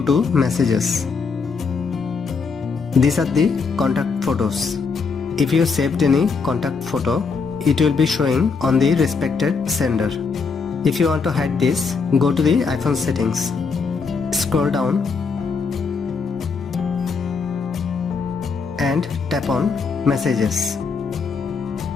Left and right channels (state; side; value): quieter; right; 5.0 dB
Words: to Messages. These are the contact photos. If you saved any contact photo, it will be showing on the respected sender. If you want to hide this, go to the iPhone settings. Scroll down and tap on Messages.